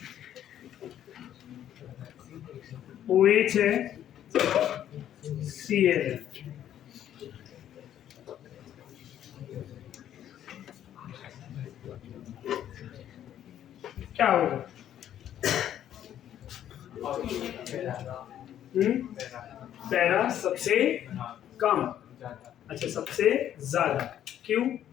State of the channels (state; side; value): quieter; right; 10.9 dB